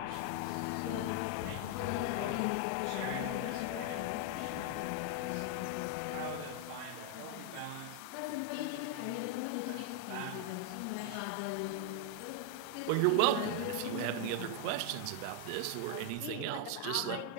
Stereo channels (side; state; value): both; different; correlation 0.00